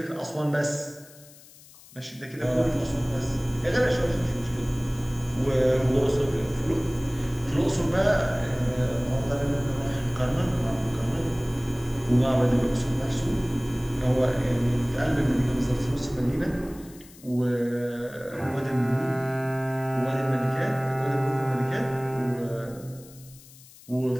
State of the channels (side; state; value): left; noise; hiss, 22 dB below the sound